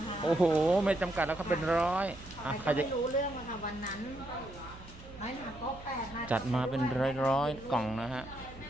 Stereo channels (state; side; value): noise; right; hum, 17 dB below the sound